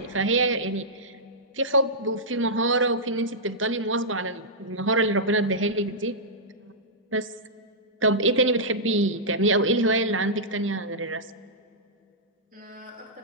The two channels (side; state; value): both; normal; correlation -0.12